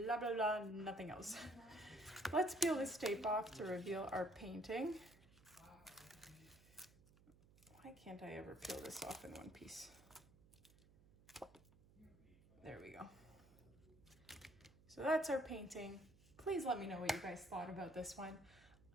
blah, blah, nothing else. Let's peel this tape off to reveal our painting. Why can't I ever peel this off in one piece? There we go. So that's our painting. Please let me know what you guys thought about this one.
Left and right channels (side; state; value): right; noise; hum, 25 dB below the sound